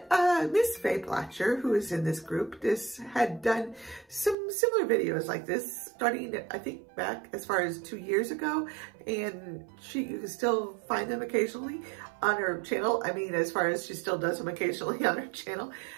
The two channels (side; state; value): left; drops out; at 4.4 s